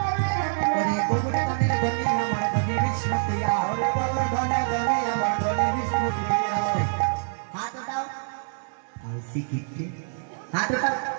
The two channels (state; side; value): silent; left; 61 dB below the other